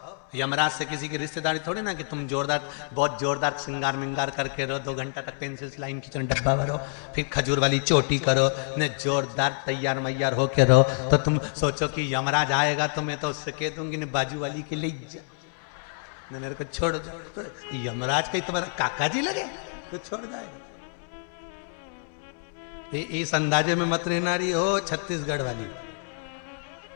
यमराज से किसी की रिश्तेदारी थोड़ी ना कि तुम जोरदार, बहुत जोरदार श्रृंगार मिंगार करके रहो, 2 घंटा तक पेंसिल लाइन खींचो, डब्बा भरो, फिर खजूर वाली चोटी करो, ने जोरदार तैयार मैयार होके रहो। तो तुम सोचो कि यमराज आएगा तो मैं तो उससे कह दूंगी ने बाजू वाली के लिए मेरे को छोड़ जाओ। तो यमराज का तुम्हारा काका जी लगे तो छोड़ जाएगा। इस अंदाजे में मत रहना रही हो छत्तीसगढ़ वाली।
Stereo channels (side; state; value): right; silent; 60 dB below the other